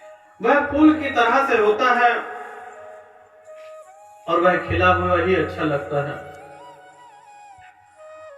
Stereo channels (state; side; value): identical; both; correlation 1.00